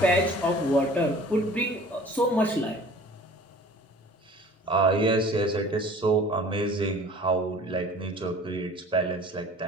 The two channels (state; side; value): normal; both; correlation 0.46